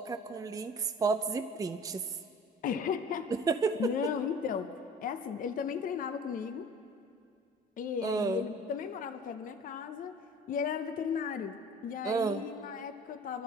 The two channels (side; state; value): both; normal; correlation 0.44